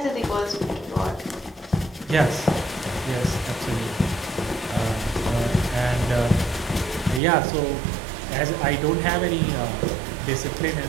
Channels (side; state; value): left; drops out; at 7.2 s